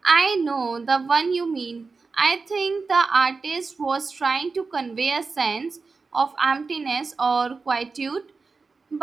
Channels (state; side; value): quieter; left; 4.4 dB